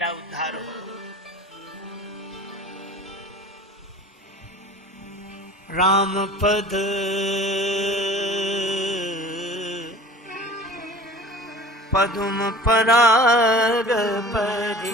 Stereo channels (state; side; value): normal; both; correlation 0.41